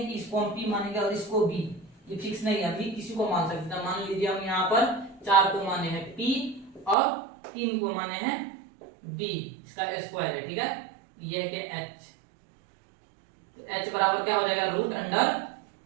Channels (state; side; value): drops out; left; at 7.0 s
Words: कि इसको हम p मानेंगे और इसको b, ये फिक्स नहीं है, अभी किसी को मान सकते हैं। मान लीजिए हम यहाँ पर 4 को माने हैं p और 3 को माने हैं b, इसका स्क्वायर है, ठीक है, ये क्या h, तो h बराबर क्या हो जाएगा, रूट अंडर